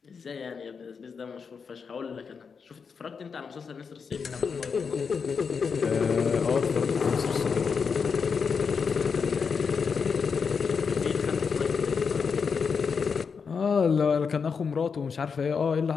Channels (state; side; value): quieter; right; 5.8 dB